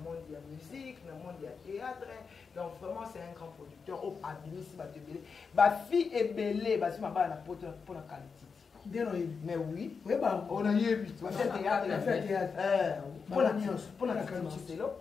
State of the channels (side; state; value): right; quieter; 5.4 dB